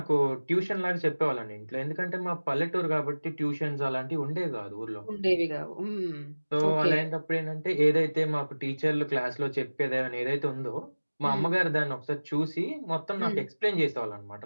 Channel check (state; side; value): inverted; both; correlation -1.00